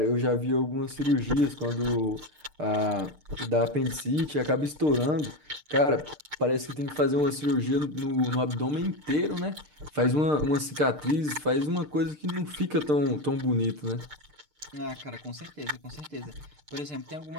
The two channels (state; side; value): late; left; 6.6 ms